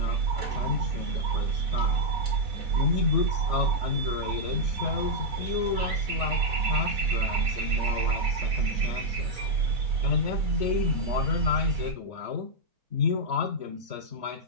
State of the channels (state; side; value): late; left; 4.1 ms